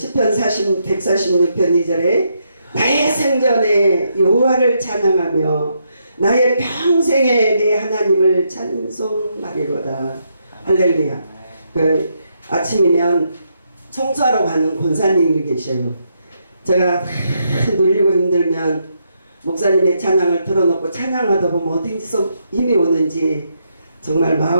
146편 2절에 나의 생전에 여호와를 찬양하며 나의 평생에 내 하나님을 찬송하리로다. 할렐루야. 그 아침이면 청소하러 가는 권사님이 계셔요. 제가 눌리고 힘들면 목사님의 찬양을 틀어놓고 찬양하다 보면 어디서 힘이 오는지 정말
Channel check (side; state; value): both; inverted; correlation -0.78